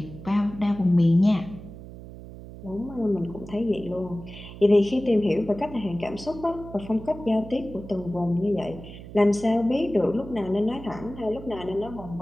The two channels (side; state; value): right; noise; hum, 14 dB below the sound